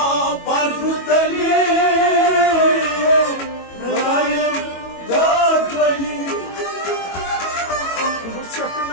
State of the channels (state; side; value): late; right; 22 ms